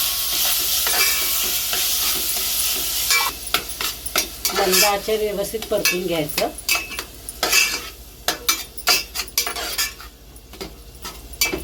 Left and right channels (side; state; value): both; identical; correlation 1.00